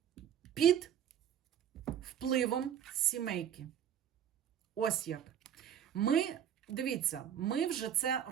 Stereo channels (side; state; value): left; quieter; 9.3 dB